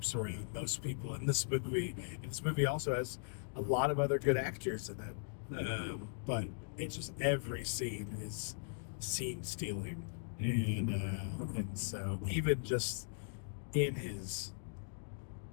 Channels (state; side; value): silent; right; digital silence